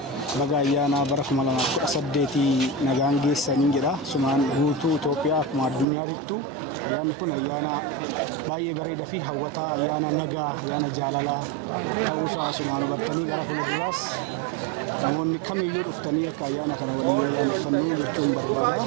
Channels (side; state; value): left; drops out; at 5.9 s